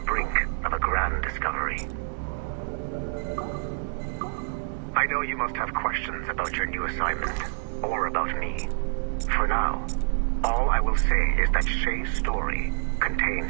of a grand discovery. I know you must have questions about your new assignment, or about me. For now, all I will say is that Shay's story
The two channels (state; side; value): silent; left; digital silence